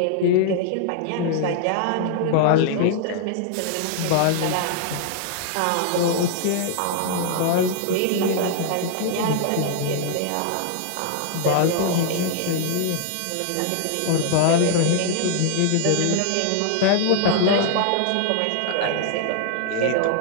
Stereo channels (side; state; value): both; different; correlation 0.00